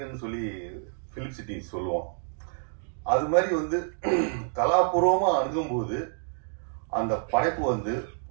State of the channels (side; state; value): left; silent; digital silence